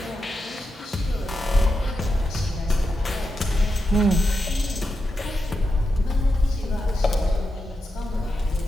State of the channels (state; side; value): normal; both; correlation 0.87